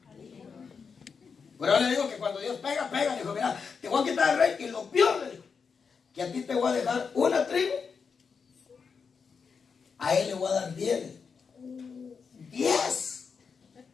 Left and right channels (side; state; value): right; quieter; 5.7 dB